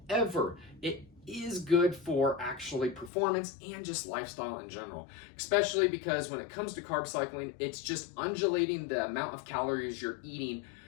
it is good for actually performance and just lifestyle in general, especially because when it comes to carb cycling, it's just undulating the amount of calories you're eating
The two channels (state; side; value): drops out; right; at 3.1 s